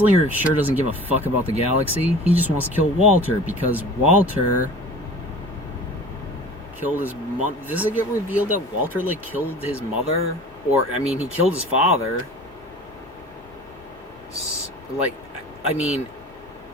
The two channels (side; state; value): both; normal; correlation 0.41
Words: sure doesn't give a fuck about the galaxy. He just wants to kill Walter because Walter killed his mom. Does it get revealed that Walter, like, killed his mother? Or, I mean, he killed his father. Like, I mean,